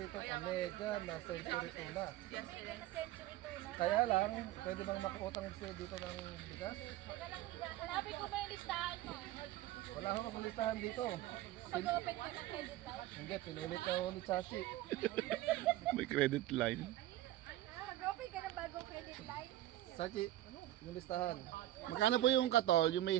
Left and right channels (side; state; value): left; quieter; 15.0 dB